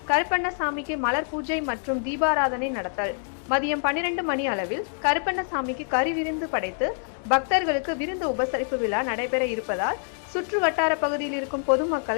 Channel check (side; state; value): right; silent; digital silence